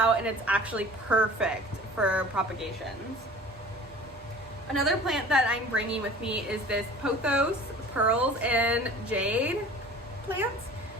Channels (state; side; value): normal; both; correlation 0.43